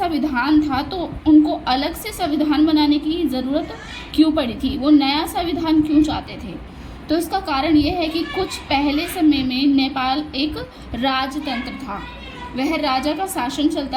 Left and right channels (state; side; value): identical; both; correlation 1.00